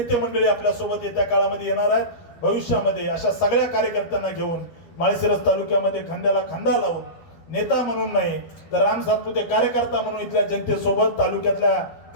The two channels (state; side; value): late; right; 12 ms